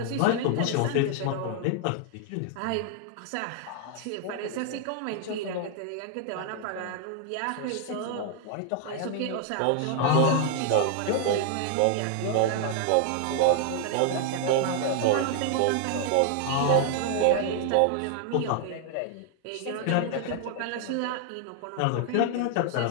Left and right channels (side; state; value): both; different; correlation 0.00